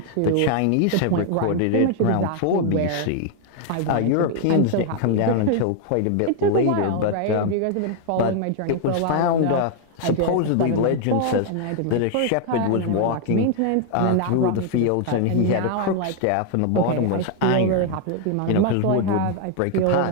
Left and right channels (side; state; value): both; different; correlation 0.00